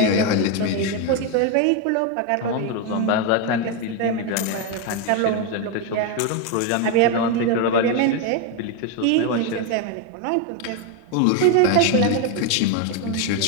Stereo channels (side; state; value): both; different; correlation 0.02